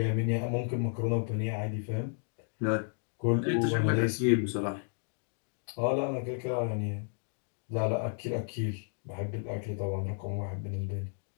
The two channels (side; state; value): right; silent; 56 dB below the other